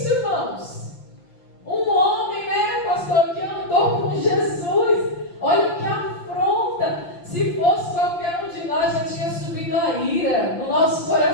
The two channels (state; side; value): late; right; 5.8 ms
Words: irmãos. Um homem, né, pastor, que andou com Jesus. Olha que afronta. Se fosse qualquer um de nós, já tinha subido a ira no nosso